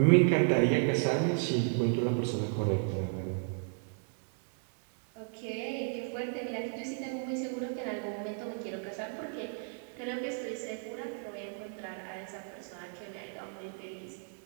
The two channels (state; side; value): silent; left; 55 dB below the other